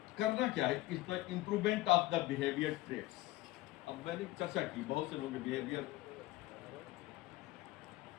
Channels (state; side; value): quieter; right; 17.9 dB